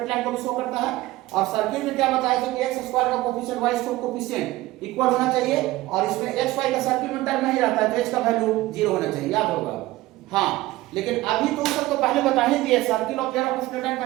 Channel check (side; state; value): left; quieter; 17.8 dB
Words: line को भी शो करता है। और सर्किल में क्या बताया था कि x स्क्वायर का coefficient y square coefficient equal होना चाहिए, और इसमें xy का सर्किल में टर्म नहीं रहता है तो h का वैल्यू 0 होना चाहिए, याद होगा। हाँ, लेकिन अभी तो सबको पहले बता ही दिए, सर्किल और पेयर ऑफ स्ट्रेट लाइन